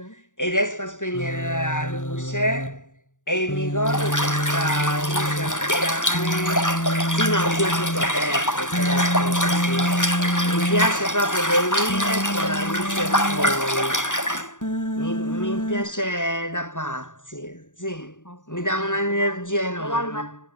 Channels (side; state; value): right; late; 0.86 ms